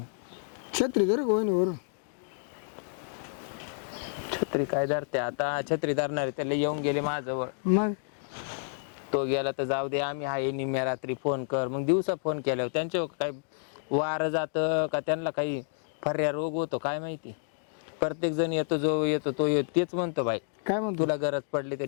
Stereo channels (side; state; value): right; silent; digital silence